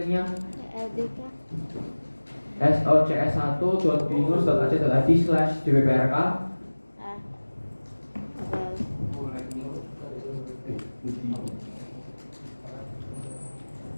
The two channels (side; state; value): both; inverted; correlation -1.00